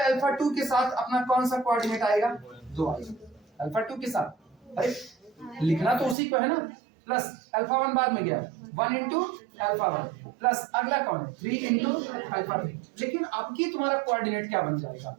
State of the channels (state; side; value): drops out; left; at 6.2 s